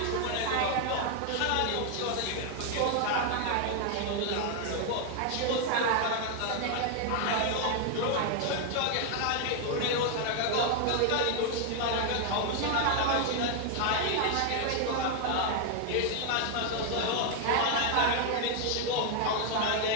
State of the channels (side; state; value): both; different; correlation 0.00